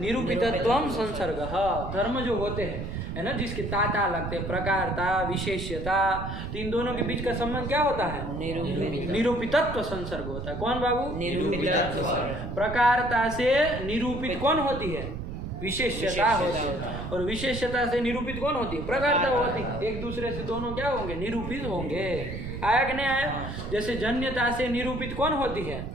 संसर्ग। हाँ, धर्म जो होते हैं है ना, जिसके ताता लगते हैं, प्रकारता विशेष्यता, तो इन दोनों के बीच का संबंध क्या होता है? निरूपितत्व संसर्ग होता है। कौन बाबू? निरूपितत्व। प्रकारता से निरूपित कौन होती है? विशेष्यता होती है। और विशेष्यता से निरूपित कौन होती है? प्रकारता होती है। एक दूसरे से दोनों क्या होंगे? निरूपित होंगे। आया कि नहीं आया? जैसे जन्यता से निरूपित कौन होती है?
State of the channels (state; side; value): noise; right; rumble, 7 dB below the sound